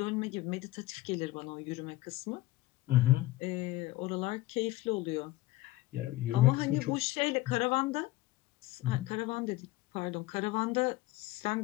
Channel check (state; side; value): quieter; right; 17.9 dB